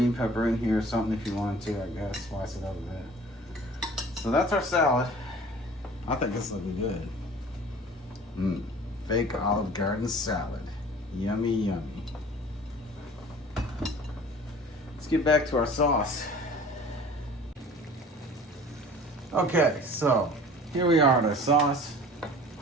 pepper in here or something if you want to, I guess. Slice it up a bit. So that's our salad. I think this looking good. Fake Olive Garden salad. Yummy, yummy. Let's get back to our sauce. Okay, so here we are at our sauce.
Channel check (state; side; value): normal; both; correlation 0.45